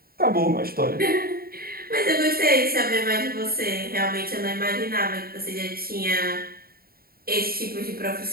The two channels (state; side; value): late; left; 0.43 ms